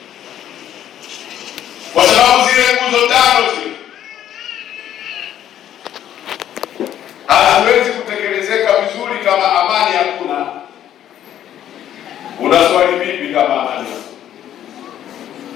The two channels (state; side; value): quieter; right; 11.0 dB